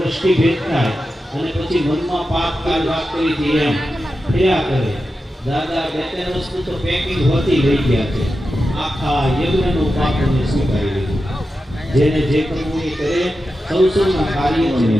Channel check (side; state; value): both; normal; correlation 0.91